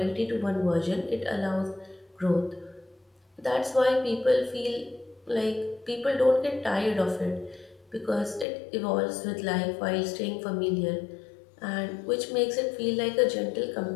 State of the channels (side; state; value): right; drops out; at 8.5 s